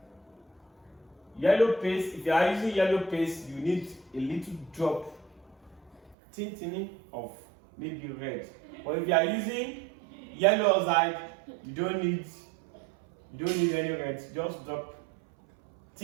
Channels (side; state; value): left; drops out; at 6.2 s